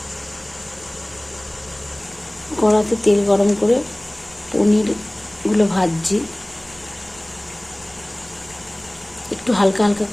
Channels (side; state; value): right; noise; rumble, 27 dB below the sound